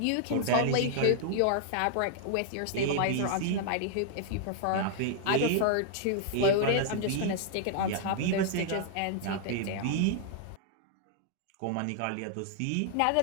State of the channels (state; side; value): different; both; correlation -0.01